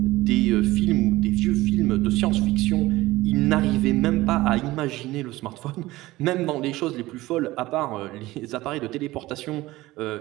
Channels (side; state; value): left; quieter; 18.3 dB